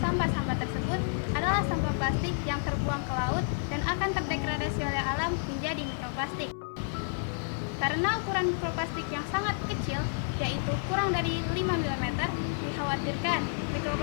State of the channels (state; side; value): silent; right; 58 dB below the other